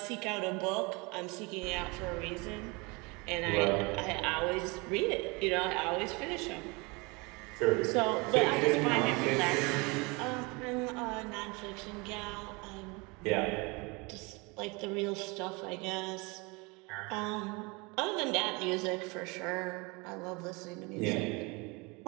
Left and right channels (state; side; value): quieter; left; 27.4 dB